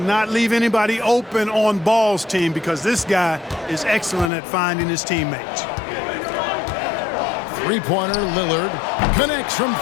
leave anybody open on Ball's team because this guy is excellent at finding his teammates. Three-pointer, Lillard connects from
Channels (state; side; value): drops out; right; at 4.3 s